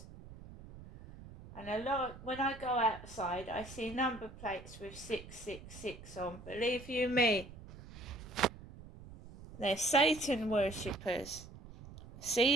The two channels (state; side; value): noise; right; rumble, 16 dB below the sound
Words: And a lot, when I go outside, I see number plates with 666 on. Believe you me, they're Satan worshippers.